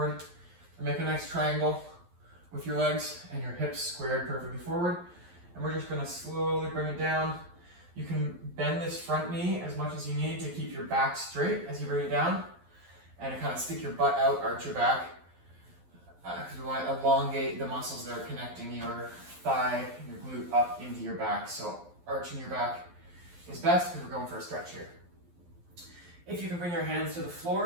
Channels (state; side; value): late; left; 11 ms